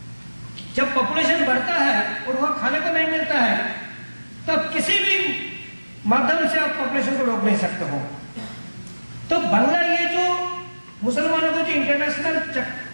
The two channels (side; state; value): both; inverted; correlation -1.00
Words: जब पॉपुलेशन बढ़ता है और वहां खाने को नहीं मिलता है, तब किसी भी माध्यम से आप पॉपुलेशन को रोक नहीं सकते हो। तो बांग्ला, ये जो मुसलमानों को जो इंटरनेशनल